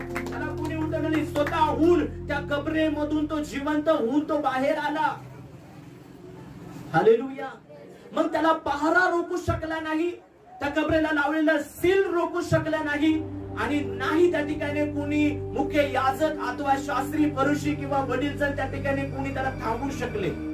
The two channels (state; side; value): identical; both; correlation 1.00